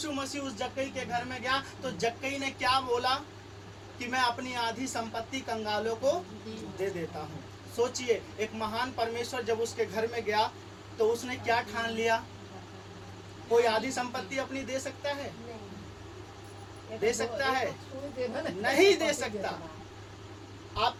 मसीह उस जक्कई के घर में गया तो जक्कई ने क्या बोला कि मैं अपनी आधी संपत्ति कंगालों को दे देता हूँ। सोचिए, एक महान परमेश्वर जब उसके घर में गया तो उसने क्या ठान लिया? कोई आधी संपत्ति अपनी दे सकता है? दे सकता है? नहीं दे सकता।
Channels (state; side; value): identical; both; correlation 1.00